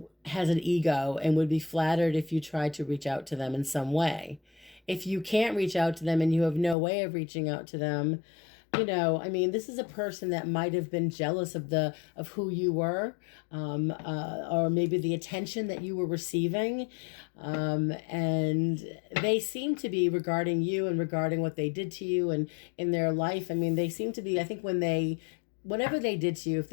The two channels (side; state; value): right; drops out; at 6.8 s